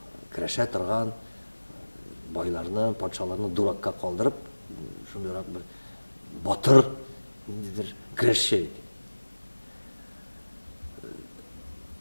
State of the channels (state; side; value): inverted; both; correlation -1.00